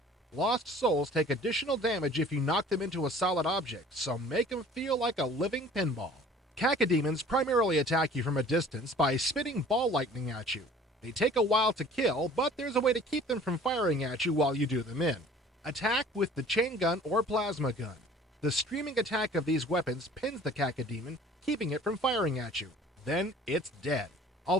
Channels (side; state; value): both; normal; correlation 0.49